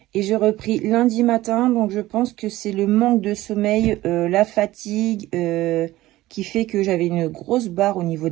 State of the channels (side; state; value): left; quieter; 16.7 dB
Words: Et j'ai repris lundi matin, donc je pense que c'est le manque de sommeil, la fatigue qui fait que j'avais une grosse barre au niveau